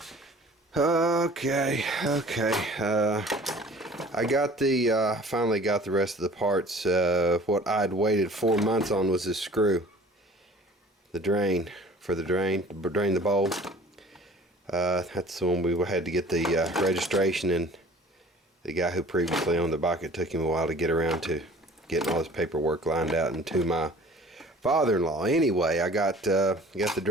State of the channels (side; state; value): both; normal; correlation 0.47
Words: Okay. I got finally got the rest of the parts. What I'd waited 4 months on was this screw. The drain, to drain the bowl. That's the one we had to get the registration, and the guy who previously owned the bike, it took him a while to get around to getting all this paperwork lined out, and to my father-in-law. Anyway, I got the